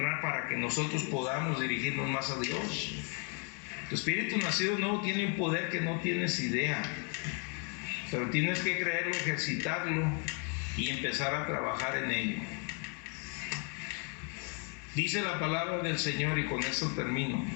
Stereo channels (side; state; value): right; quieter; 38.6 dB